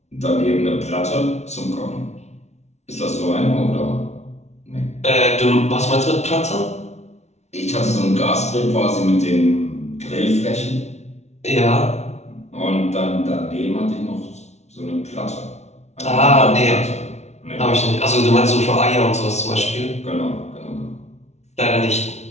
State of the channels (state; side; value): late; right; 0.32 ms